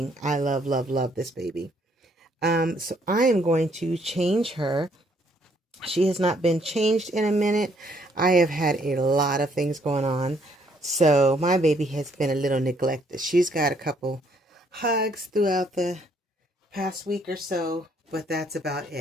I love, love, love this baby. So I am going to change her. She has not been changed in a minute. I have had a lot of things going on. So my baby has been a little neglected. She's got a couple hugs throughout the past week or so, but that's about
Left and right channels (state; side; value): normal; both; correlation 0.67